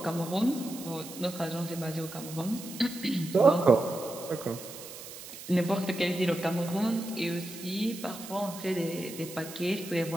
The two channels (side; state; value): right; noise; hiss, 13 dB below the sound